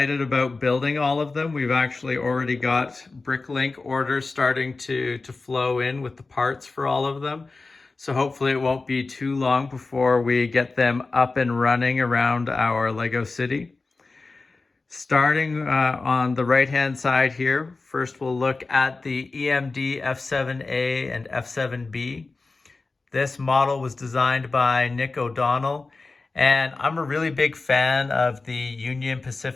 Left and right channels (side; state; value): right; quieter; 3.7 dB